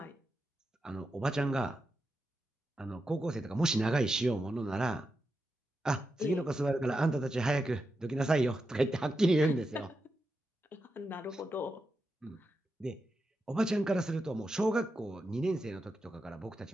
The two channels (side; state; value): both; normal; correlation 0.88